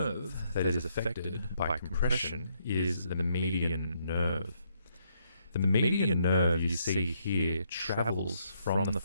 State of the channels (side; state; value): both; inverted; correlation -0.74